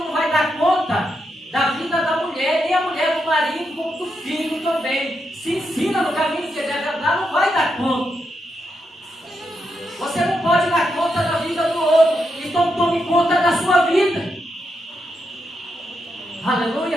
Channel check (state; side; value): normal; both; correlation 0.83